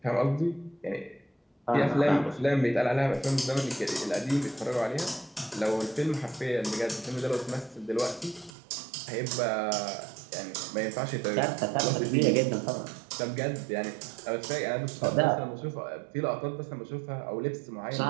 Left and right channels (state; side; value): drops out; left; at 8.5 s